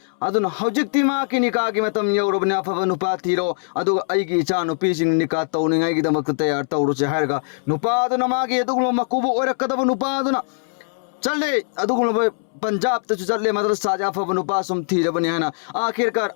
अदुना हौजिक्ति माकी निकागी मतम यौरबने अफब नुपा थीरो अदुगा अइगी इचा नुपीसि निका तौनिंगाइगिदमक तैयार तौरुसे हारगा नुपादुना मागी अदुगुम मकुबु ओरकदब नुपादुना चले अदुगुम पंजाब तु चले मदरसा जाफब नुपा सुम थीरबने हना आखिरकार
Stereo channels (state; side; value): silent; right; 65 dB below the other